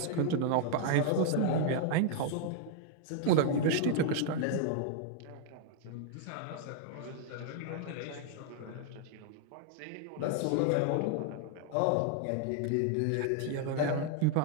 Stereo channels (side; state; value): both; different; correlation 0.00